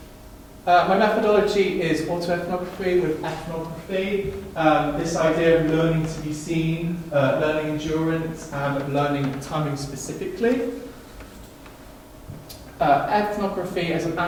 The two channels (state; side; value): identical; both; correlation 1.00